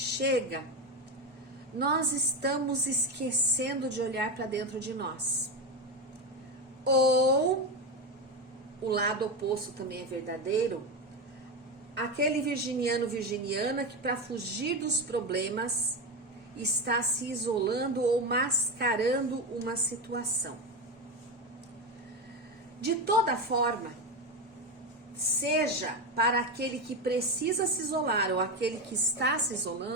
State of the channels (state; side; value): normal; both; correlation 0.15